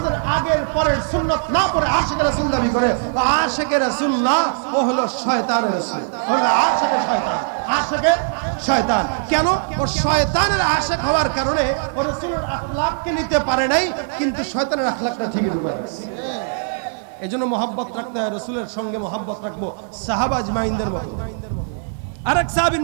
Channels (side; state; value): left; silent; digital silence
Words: আগের পরের সুন্নাত না পড়ে আশিকে রাসূল দাবি করে, আশিকে রাসূল না, ও হলো শয়তানের রাসূল, হলো আশিকে শয়তান, আশিকে শয়তান। কেন? ও শয়তানের আশিক হওয়ার কারণে ও রাসূলের আখলাককে নিতে পারে নাই, কিন্তু শয়তানের আখলাকটা ঠিকই ঢুকে গেছে। এজন্য মহব্বত রাখতে হয়, রাসূলের সঙ্গে মহব্বত রাখবো সাহাবা আজমাইনদের মতো। আরেক সাহাবীর